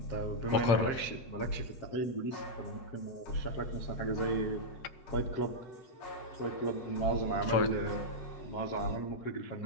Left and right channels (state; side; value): late; right; 7.4 ms